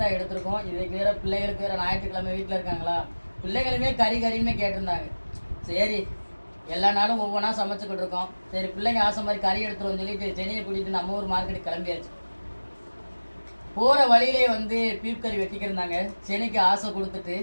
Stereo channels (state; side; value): inverted; both; correlation -1.00